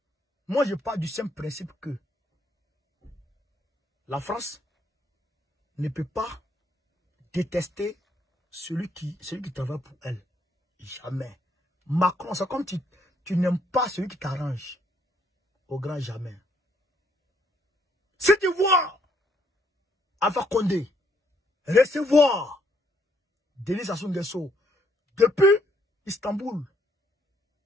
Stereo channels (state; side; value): normal; both; correlation 0.70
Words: Moi, je pars du simple principe que la France ne peut pas détester celui qui travaille pour elle. Jamais. Macron, c'est comme tu n'aimes pas celui qui t'arrange. Au grand jamais. Si tu vois Alpha Condé recevoir Denis Sassou Nguesso depuis Istanbul,